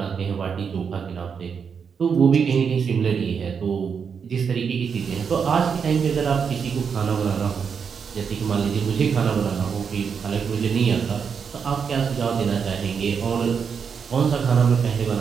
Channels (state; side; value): quieter; left; 6.5 dB